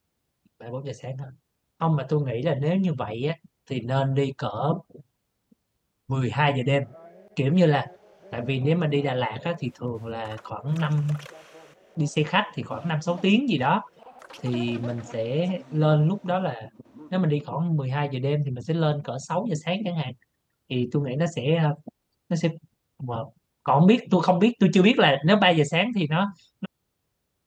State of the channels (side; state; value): both; identical; correlation 1.00